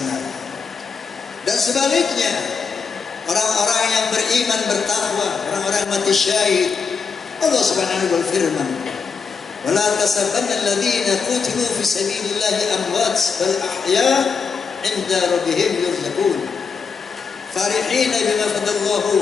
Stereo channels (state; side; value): quieter; right; 5.5 dB